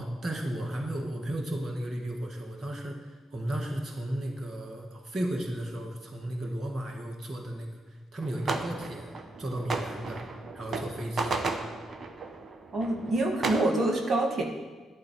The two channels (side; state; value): both; normal; correlation 0.83